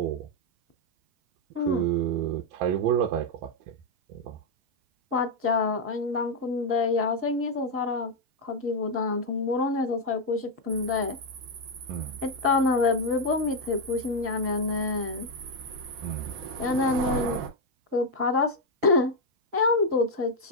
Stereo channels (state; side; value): late; left; 6.2 ms